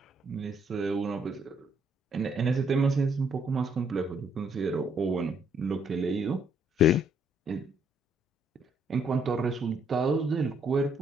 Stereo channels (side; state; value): both; normal; correlation 0.69